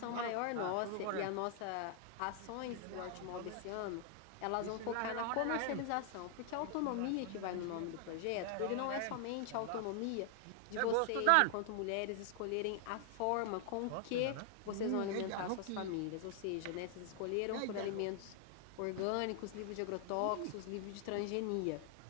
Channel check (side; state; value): both; different; correlation 0.00